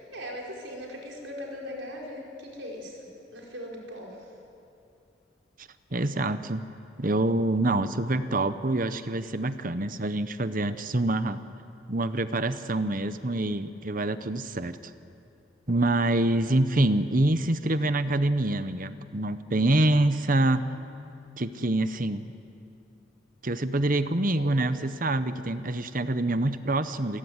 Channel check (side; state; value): both; normal; correlation 0.67